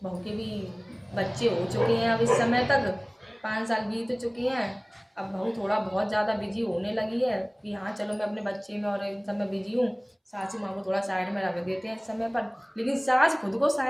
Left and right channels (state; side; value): identical; both; correlation 1.00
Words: बहू के भी बच्चे हो चुके हैं, अब इस समय तक 5 साल बीत चुके हैं। अब बहू थोड़ा बहुत ज़्यादा बिजी होने लगी है कि हाँ चलो मैं अपने बच्चे में और इन सब में बिजी हूँ, सासू माँ को थोड़ा साइड में रख देते हैं इस समय पर। लेकिन सास खुद को